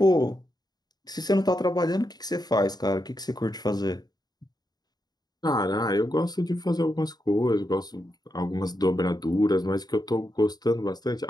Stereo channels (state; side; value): late; right; 0.19 ms